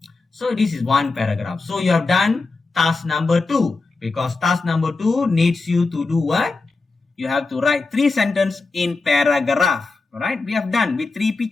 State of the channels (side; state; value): right; quieter; 3.8 dB